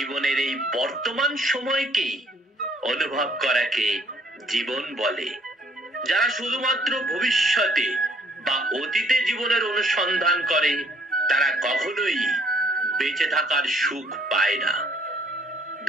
এই বর্তমান সময়কেই অনুভব করাকে জীবন বলে। যারা শুধুমাত্র ভবিষ্যতে বা অতীতে জীবনের অনুসন্ধান করে, তারা কখনোই বেঁচে থাকার সুখ পায় না।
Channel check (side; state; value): both; normal; correlation 0.63